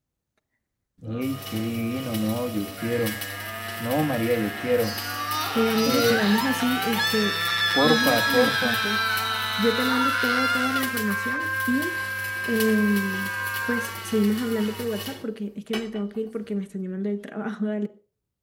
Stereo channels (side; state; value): both; identical; correlation 1.00